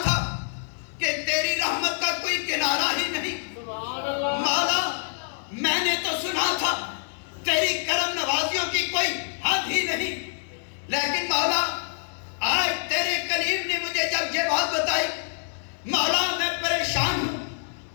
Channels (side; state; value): right; silent; digital silence